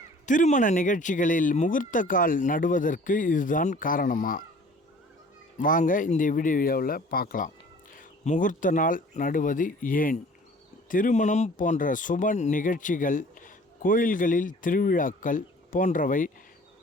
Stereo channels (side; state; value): both; normal; correlation 0.49